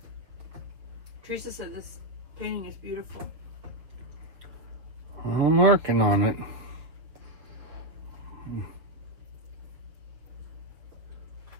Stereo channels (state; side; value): late; left; 6.1 ms